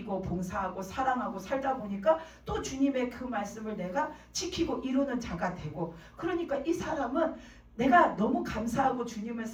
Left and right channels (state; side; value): identical; both; correlation 1.00